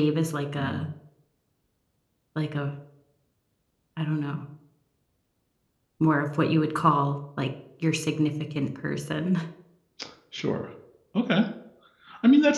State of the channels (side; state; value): both; identical; correlation 1.00